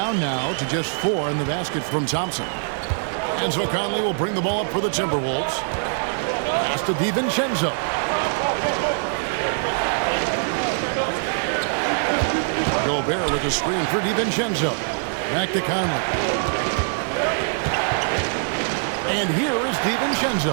now to just 4 in the basket from Thompson. And so Conley will bring the ball up for the Timberwolves. Pass to DiVincenzo. Gobert with a screen for DiVincenzo. Back to Conley. And here is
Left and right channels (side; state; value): left; silent; 62 dB below the other